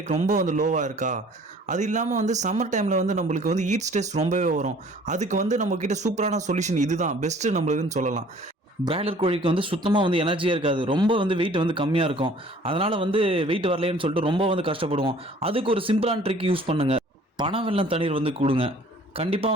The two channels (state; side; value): normal; both; correlation 0.53